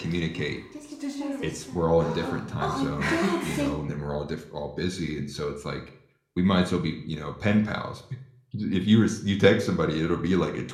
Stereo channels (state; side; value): identical; both; correlation 1.00